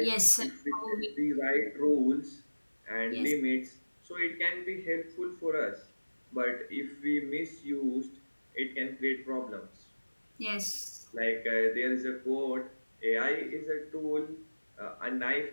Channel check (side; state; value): both; inverted; correlation -1.00